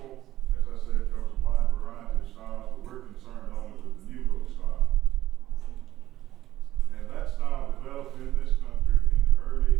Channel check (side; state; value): left; quieter; 14.1 dB